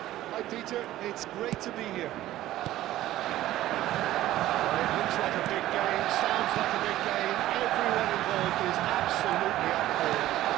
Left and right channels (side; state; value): left; quieter; 14.6 dB